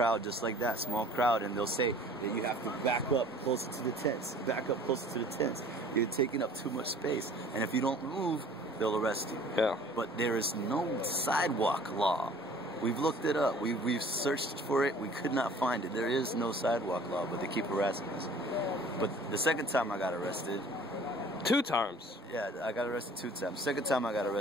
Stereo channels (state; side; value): normal; both; correlation 0.50